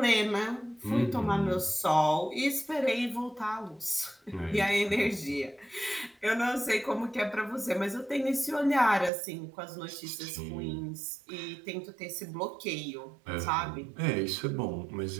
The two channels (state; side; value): drops out; left; at 9.1 s